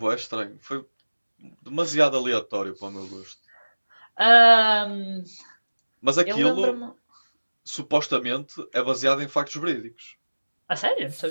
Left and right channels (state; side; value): inverted; both; correlation -1.00